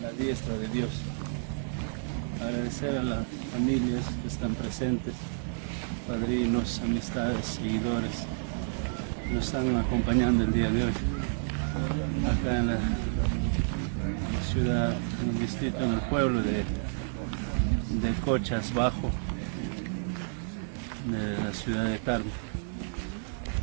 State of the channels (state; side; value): silent; left; 57 dB below the other